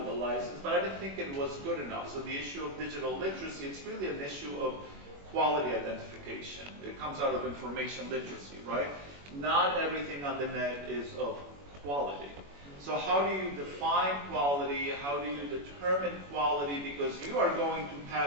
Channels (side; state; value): left; late; 21 ms